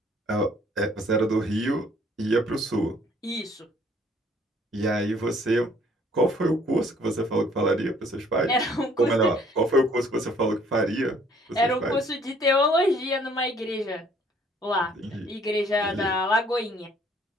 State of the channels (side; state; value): both; normal; correlation 0.60